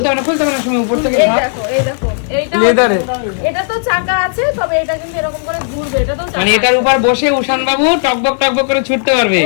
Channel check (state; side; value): silent; right; digital silence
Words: খুলতে হবে না সময় উপর থেকে এই ভাব। দেখো, এই দেখো, এইটা লেদারে এটা তো চাকা আছে, তবে এটা কিন্তু এরকম করে ঘুরবে, এটা তো চাকা মানে এটার উপর বসে উষান বাবু টকবক টকবক করে ছুটতে পারবে।